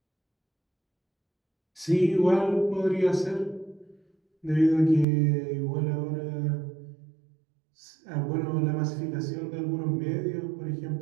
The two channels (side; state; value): left; drops out; at 5.1 s